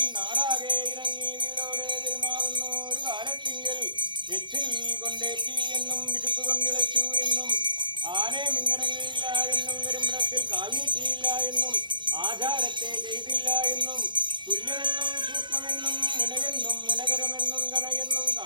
നാടാകെ ഇറങ്ങി വീടോടെ പെരുമാറുന്നു ഒരു കാലത്തിങ്കിൽ എച്ചിൽ കൊണ്ടേറ്റി എന്നും വിശുപ്പ് കൊണ്ടിളച്ചു എന്നും ആനെ മിന്നിറങ്ങിയില്ല എന്നും പെരുമ്പടത്തിൽ കാൽ നീട്ടിയില്ല എന്നും ആചാരത്തെ ചെയ്തില്ല എന്നും തുല്യമെന്നും സൂക്ഷ്മമെന്നും മുനകെന്നും മുനകരമെന്നും കണയെന്നും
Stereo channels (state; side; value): late; left; 0.22 ms